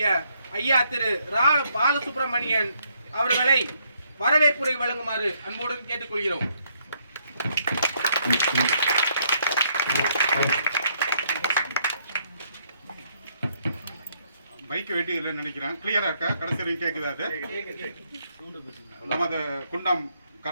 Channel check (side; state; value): both; inverted; correlation -0.71